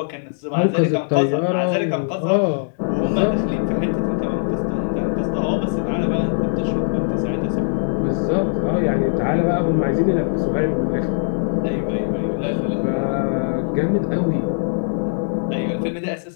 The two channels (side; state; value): right; silent; digital silence